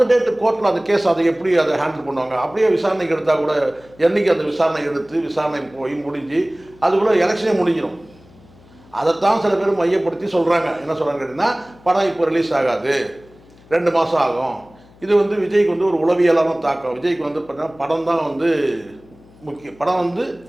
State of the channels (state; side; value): noise; left; hum, 26 dB below the sound